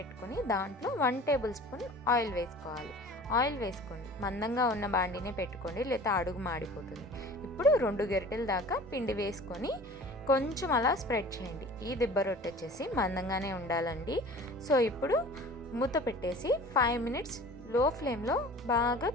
దాంట్లో 1 టేబుల్ స్పూన్ ఆయిల్ వేసుకోవాలి. ఆయిల్ వేసుకోండి. మందంగా ఉన్న బాండినే పెట్టుకోండి, లేదా అడుగు మాడిపోతుంది. ఇప్పుడు 2 గరిటెల దాకా పిండి వేసుకొని కొంచెం అలా స్ప్రెడ్ చేయండి. ఈ దిబ్బ రొట్టె వచ్చేసి మందంగానే ఉండాలండి. సో ఇప్పుడు మూత పెట్టేసి 5 మినిట్స్ లో ఫ్లేమ్లో బాగా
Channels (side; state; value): both; normal; correlation 0.43